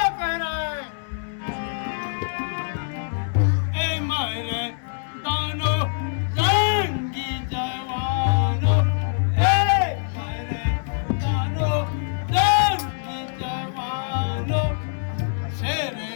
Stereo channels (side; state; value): right; silent; 63 dB below the other